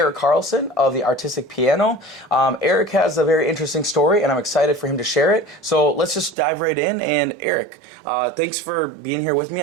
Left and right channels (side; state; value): left; drops out; at 6.4 s